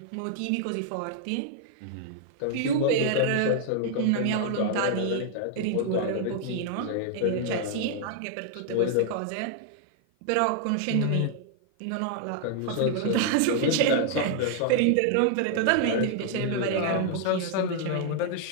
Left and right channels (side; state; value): both; different; correlation 0.00